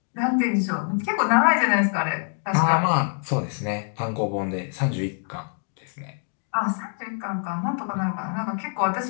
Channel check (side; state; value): right; silent; 55 dB below the other